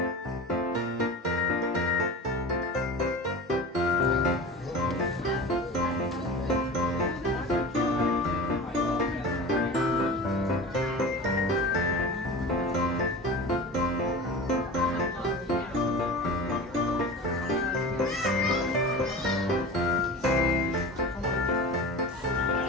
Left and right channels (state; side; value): normal; both; correlation 0.33